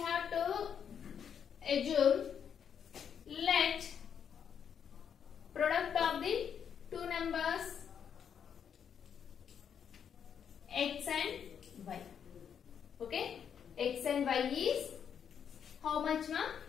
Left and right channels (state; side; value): quieter; right; 7.9 dB